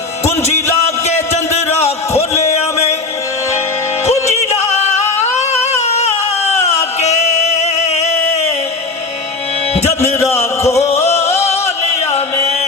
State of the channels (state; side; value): quieter; right; 3.6 dB